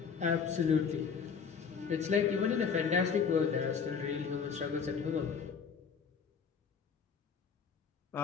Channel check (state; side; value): quieter; right; 6.3 dB